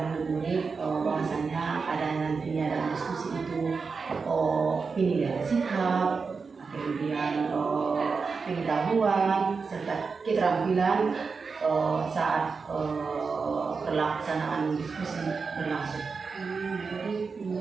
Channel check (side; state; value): left; quieter; 4.9 dB